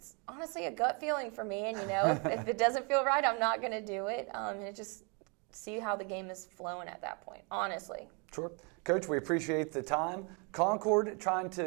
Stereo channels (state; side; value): quieter; left; 33.5 dB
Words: honestly a gut feeling for me. And, if it doesn't feel right, I'm not going to do it. And it just see how the game is flowing at that point, honestly. Sure. Coach, we appreciate the time. Concord trying